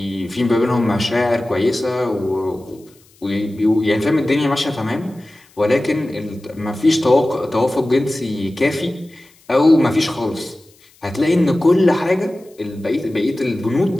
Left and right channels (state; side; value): noise; left; hiss, 30 dB below the sound